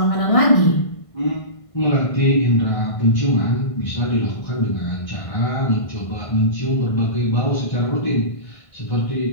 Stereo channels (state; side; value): late; right; 1.5 ms